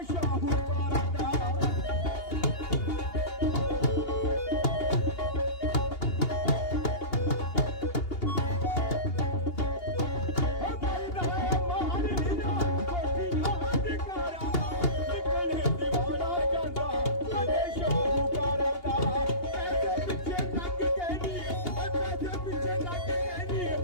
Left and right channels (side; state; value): right; late; 2.8 ms